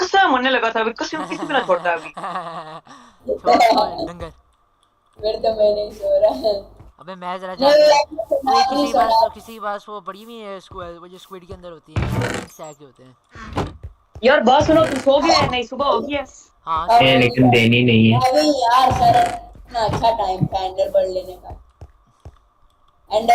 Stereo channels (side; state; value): both; identical; correlation 1.00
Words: होने लगा था अभी, कसम किसी को ना छोड़ता अभी। छोड़ छोड़ डंगर। फिर तो मैं नहीं सो रहा। अबे मैं जरा नहीं जाके, यार, ओए नहीं सोना। किसी के पास वो पड़ी हुई है स्क्वाड, वो जो स्क्विड के अंदर होती है, तीन सैक होते हैं। यार बात सुनो, तुम सो गए? नहीं सुबह हो गई है। हाँ अब सुबह हो गई लेकिन है। देनी नहीं है। अभी यार सर, इतना अच्छा टाइम था एंडर बर्ड लेने का।